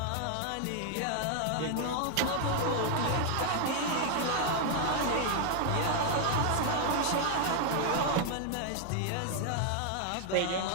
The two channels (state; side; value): different; both; correlation 0.00